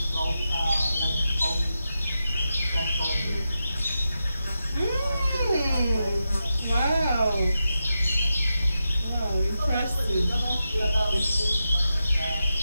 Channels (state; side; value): inverted; both; correlation -0.89